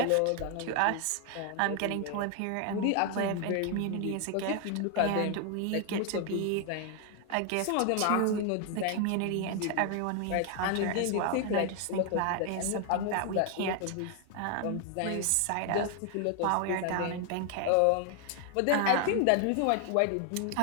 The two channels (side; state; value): both; different; correlation 0.00